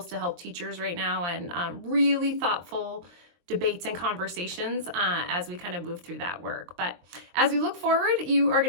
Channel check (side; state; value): left; late; 23 ms